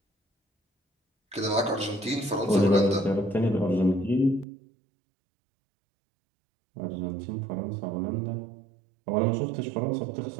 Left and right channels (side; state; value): left; drops out; at 4.5 s